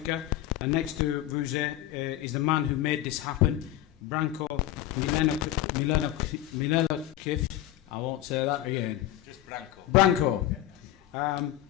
And next to Vusi is the man who made this happen, Branko Milenkovic. I won't say that again. Just Branko. Branko.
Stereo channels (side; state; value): right; quieter; 13.6 dB